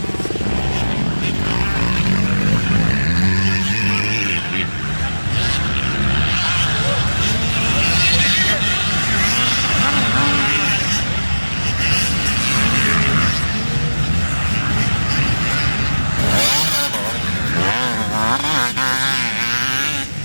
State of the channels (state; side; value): inverted; both; correlation -1.00